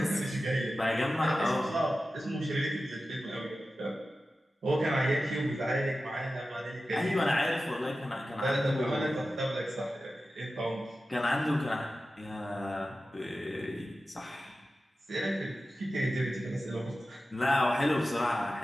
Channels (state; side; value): normal; both; correlation 0.94